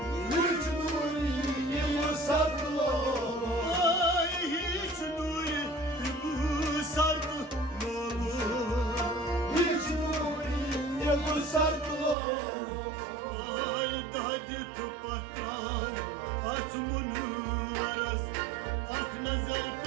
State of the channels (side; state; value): left; drops out; at 12.2 s